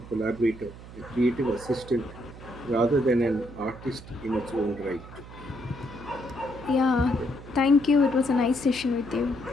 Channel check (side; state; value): right; noise; hum, 16 dB below the sound